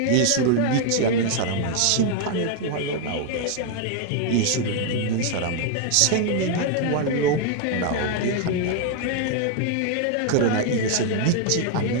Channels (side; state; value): both; different; correlation 0.00